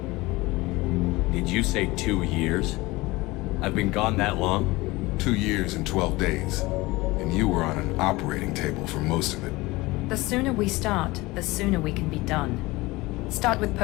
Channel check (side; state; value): right; quieter; 21.2 dB